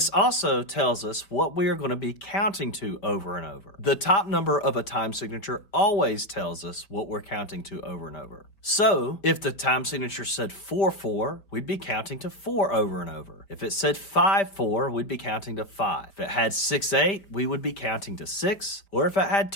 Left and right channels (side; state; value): right; late; 5.1 ms